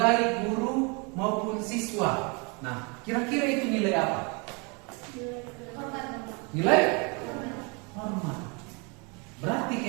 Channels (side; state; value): left; quieter; 31.9 dB